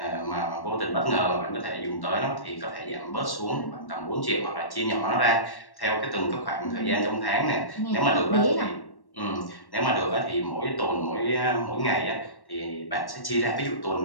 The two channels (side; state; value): right; late; 1.1 ms